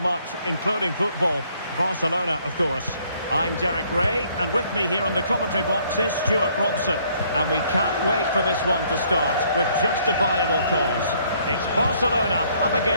much, including football. Barcelona, of course. I'm Derek Ray, and with me here on the commentary box is Stuart Robson. And we can't wait for this one to start with justifiable cause. It's Barcelona up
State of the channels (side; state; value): both; inverted; correlation -0.64